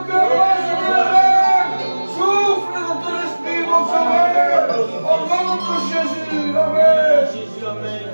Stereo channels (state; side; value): inverted; both; correlation -1.00